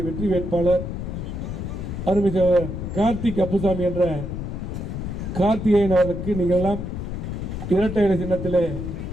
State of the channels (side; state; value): left; noise; rumble, 5 dB below the sound